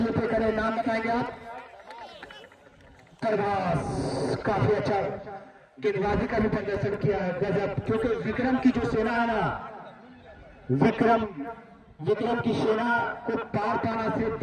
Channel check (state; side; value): identical; both; correlation 1.00